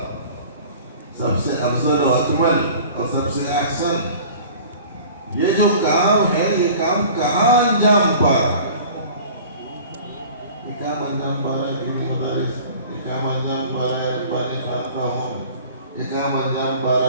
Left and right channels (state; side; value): inverted; both; correlation -0.44